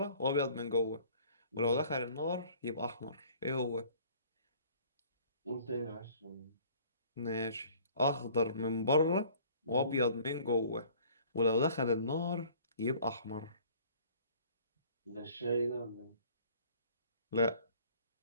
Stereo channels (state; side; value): inverted; both; correlation -0.52